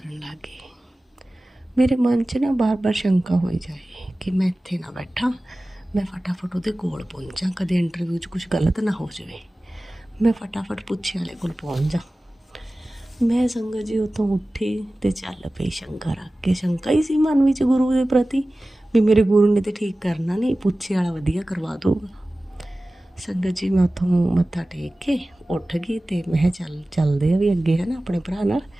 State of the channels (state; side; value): normal; both; correlation 0.97